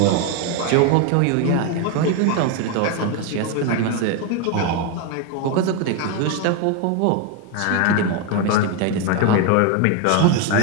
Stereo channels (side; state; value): both; different; correlation 0.02